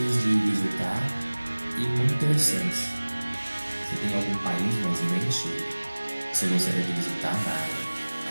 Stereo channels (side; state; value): both; inverted; correlation -1.00